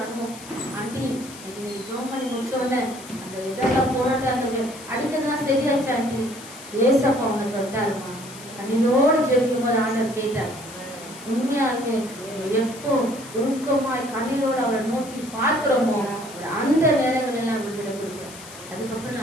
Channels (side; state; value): left; noise; hiss, 16 dB below the sound